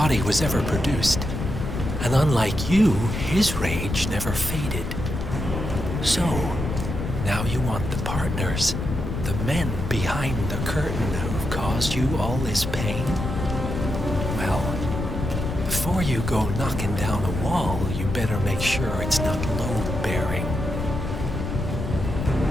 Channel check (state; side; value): noise; left; rumble, 4 dB below the sound